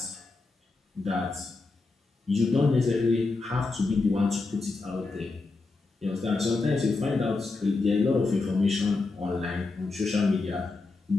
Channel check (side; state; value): right; quieter; 3.7 dB